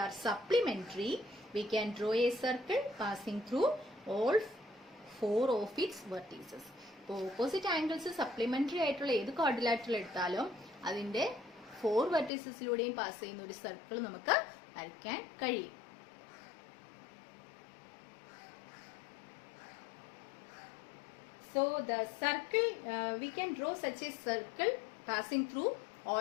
are supplementary, we can draw a circle passing through all 4 of its vertices. അപ്പോൾ opposite angles supplementary ആയിട്ടുള്ള ഏത് ക്വാഡ്രിലാറ്ററൽ എടുത്താലും അതിന്റെ 4 വെർട്ടിസസിലൂടെയും പാസ് ചെയ്യുന്ന ഒരു സർക്കിൾ നമുക്ക് വരയ്ക്കാൻ കഴിയും. So the circle, we can draw such a circle passing through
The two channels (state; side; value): drops out; right; at 12.3 s